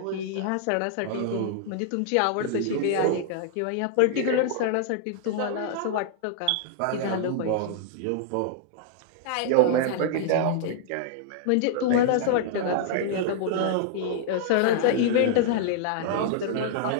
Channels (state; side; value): different; both; correlation -0.01